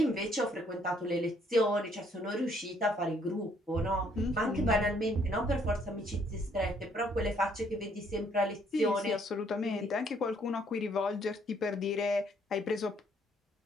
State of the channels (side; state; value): both; normal; correlation 0.66